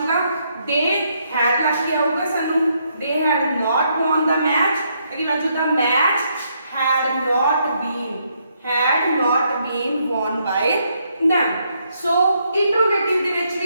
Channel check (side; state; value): both; inverted; correlation -0.75